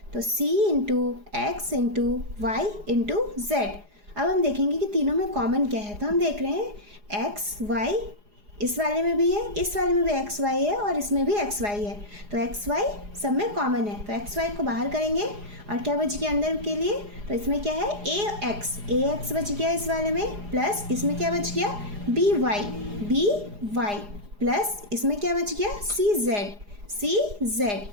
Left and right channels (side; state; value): left; late; 4.9 ms